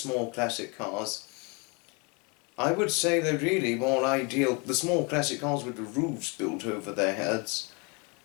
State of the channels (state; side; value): quieter; right; 31.4 dB